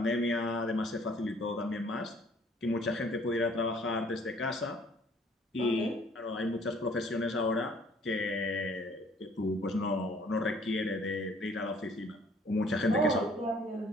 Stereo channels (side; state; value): both; normal; correlation 0.58